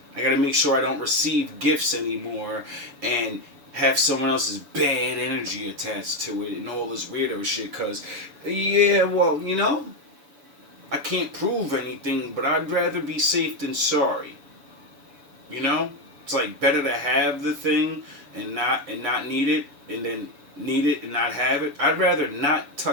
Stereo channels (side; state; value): left; late; 7.0 ms